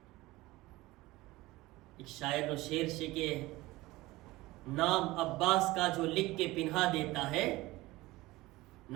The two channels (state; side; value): quieter; left; 19.3 dB